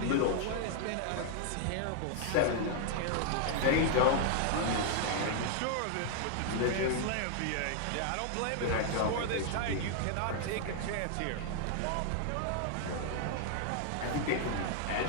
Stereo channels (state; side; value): different; both; correlation 0.00